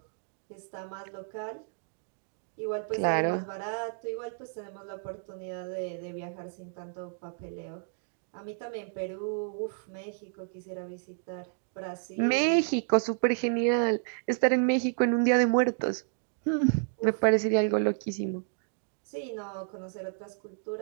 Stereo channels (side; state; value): left; silent; digital silence